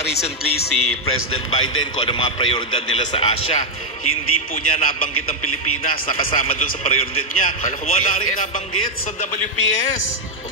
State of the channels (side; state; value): both; normal; correlation 0.00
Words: recently si President Biden kung ano mga prioridad nila sa Asia, hindi po niya nabanggit ang Pilipinas, nakasama doon sa prioridad niya. Wala rin nabanggit sa WPS. O